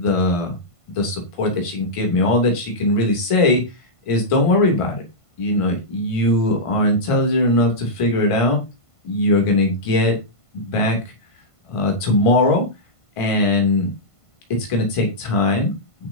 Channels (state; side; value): late; right; 1.5 ms